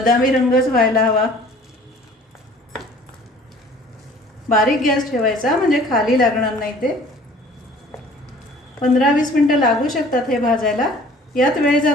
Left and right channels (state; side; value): normal; both; correlation 0.50